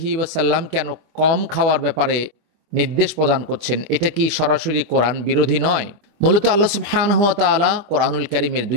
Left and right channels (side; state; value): left; late; 25 ms